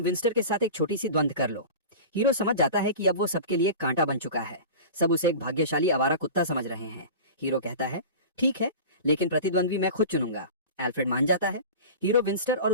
विंस्टर के साथ एक छोटी सी द्वंद्व कर लो। हीरो समझ जाता है कि अब वो सबके लिए कांटा बन चुका है। सब उसे एक भाग्यशाली आवारा कुत्ता समझ रहे हैं। हीरो कहता है, ठीक है, लेकिन प्रतिद्वंद्वी मैं खुद चुनूंगा। एल्फ्रेड मान जाता है। हीरो विंस्टर और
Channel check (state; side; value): inverted; both; correlation -0.33